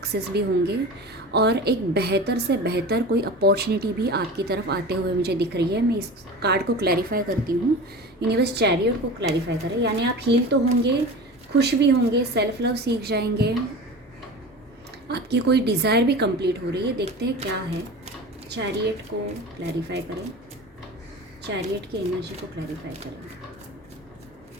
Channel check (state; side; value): normal; both; correlation 0.33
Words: भी होंगे और एक बेहतर से बेहतर कोई अपॉर्चुनिटी भी आपकी तरफ आते हुए मुझे दिख रही है। मैं इस कार्ड को क्लैरिफाई करती हूँ। यूनिवर्स चैरियट को क्लैरिफाई करें, यानी आप हील तो होंगे, खुश भी होंगे, सेल्फ लव सीख जाएंगे, आपकी कोई डिज़ायर भी कंप्लीट हो रही है। देखते हैं क्या है। चैरियट को क्लैरिफाई करें, चैरियट की एनर्जी को क्लैरिफाई करें।